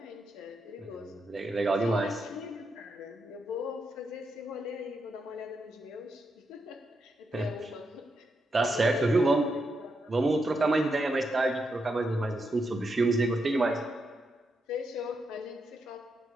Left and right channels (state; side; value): normal; both; correlation 0.83